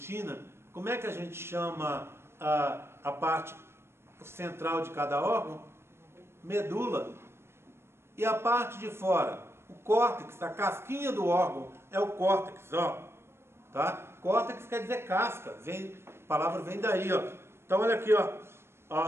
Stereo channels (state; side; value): late; left; 0.12 ms